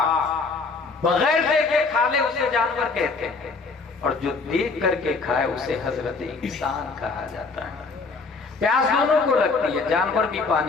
بغیر دیکھے کھا لے اسے جانور کہتے ہیں، اور جو دیکھ کر کے کھائے اسے حضرت انسان کہا جاتا ہے۔ پیاس دونوں کو لگتی ہے، جانور بھی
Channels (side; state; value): right; quieter; 4.2 dB